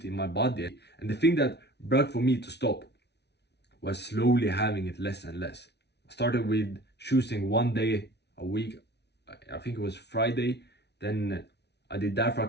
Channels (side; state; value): right; late; 0.49 ms